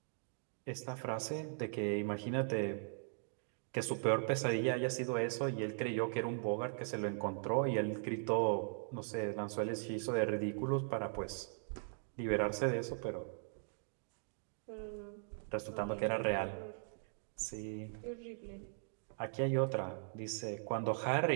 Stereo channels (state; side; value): silent; left; digital silence